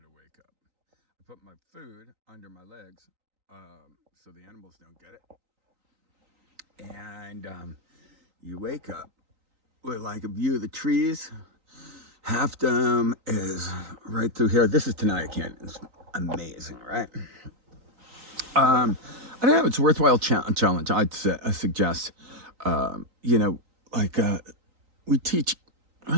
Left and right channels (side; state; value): left; late; 3.9 ms